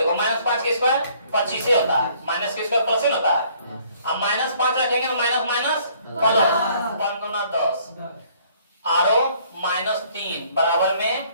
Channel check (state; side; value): inverted; both; correlation -0.60